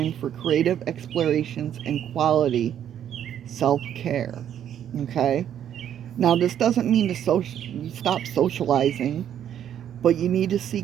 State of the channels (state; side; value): quieter; left; 9.9 dB